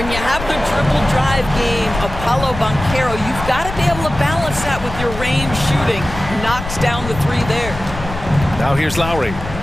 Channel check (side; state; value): left; noise; rumble, 9 dB below the sound